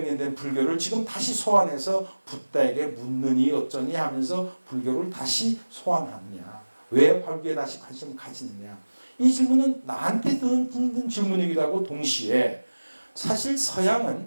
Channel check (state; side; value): inverted; both; correlation -1.00